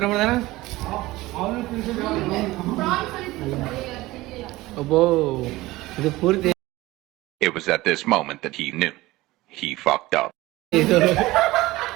ಮಾಡ್ದಾನ ಒಬ್ಬೋ. ಇದು ಪೂರ್ತಿ It was at this moment that he knew. He fucked up. ಇದು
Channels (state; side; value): quieter; left; 18.9 dB